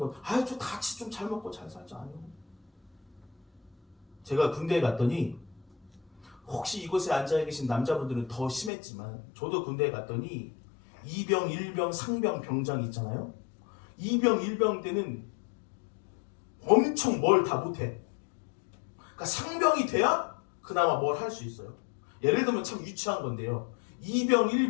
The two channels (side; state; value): right; drops out; at 8.7 s